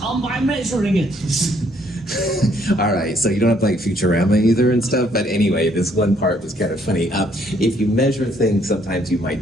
by measuring it. All right, so you don't have to like Futurama either and stuff, but anyway, this one part was kind of funny. If you measure things, sometimes you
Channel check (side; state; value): both; normal; correlation 0.67